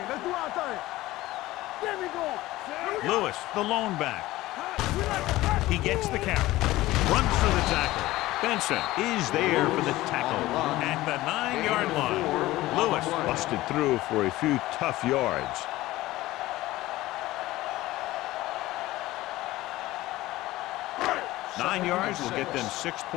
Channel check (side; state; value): right; quieter; 17.4 dB